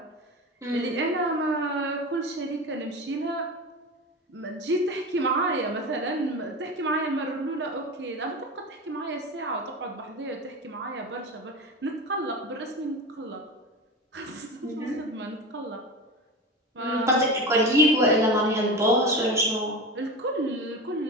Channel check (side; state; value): both; normal; correlation 0.27